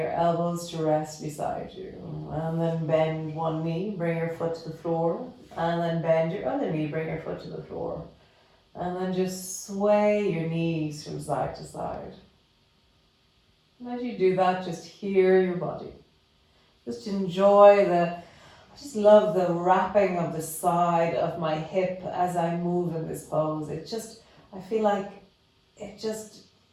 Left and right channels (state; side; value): identical; both; correlation 1.00